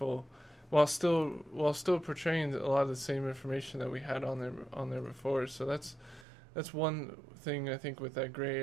while still portraying a lot of the same information that we had on there before. So that's one thing I think with that gray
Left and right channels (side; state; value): left; drops out; at 6.2 s